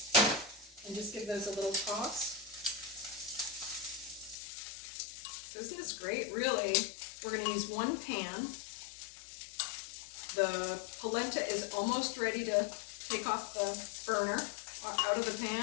And just give those a little toss. So isn't this great? Really, we're going to use 1 pan. The polenta is almost ready to take off the burner, out of the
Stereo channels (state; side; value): drops out; right; at 4.4 s